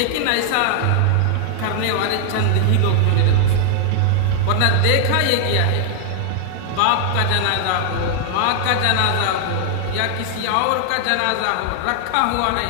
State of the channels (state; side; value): different; both; correlation 0.00